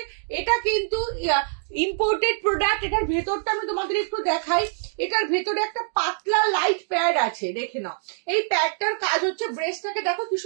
এটা কিন্তু ইম্পোর্টেড প্রোডাক্ট। এটার ভেতরটা আমি তোমাদের একটু দেখাই। এটার ভেতরে একটা পাতলা লাইট প্যাড আছে, দেখে নাও। এই প্যাডটার কাজ হচ্ছে, ব্রেস্টটাকে দেখো কি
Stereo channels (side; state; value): left; silent; digital silence